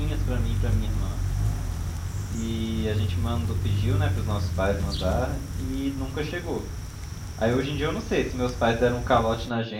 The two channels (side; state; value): both; identical; correlation 1.00